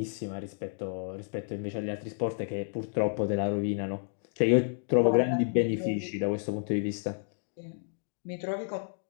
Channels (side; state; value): right; silent; digital silence